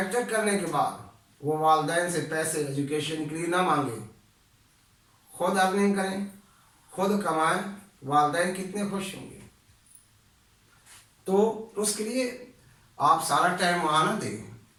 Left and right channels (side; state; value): both; identical; correlation 1.00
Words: करने के बाद वो वालिदैन से पैसे एजुकेशन के लिए ना मांगे, खुद अर्निंग करें, खुद कमाएं। वालिदैन कितने खुश होंगे। तो उसके लिए आप सारा टाइम वहाँ ना दें।